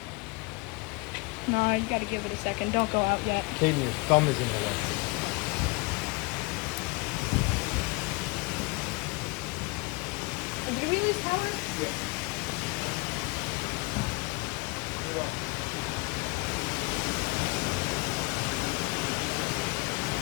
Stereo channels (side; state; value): right; quieter; 27.9 dB